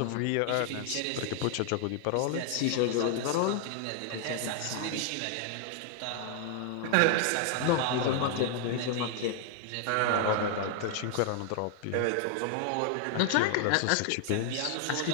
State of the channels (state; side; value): different; both; correlation 0.00